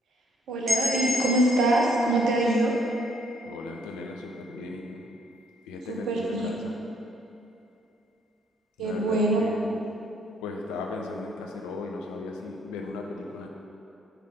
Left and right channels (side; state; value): both; normal; correlation 0.67